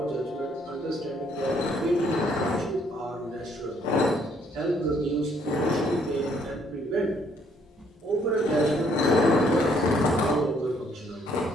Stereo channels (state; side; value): normal; both; correlation 0.67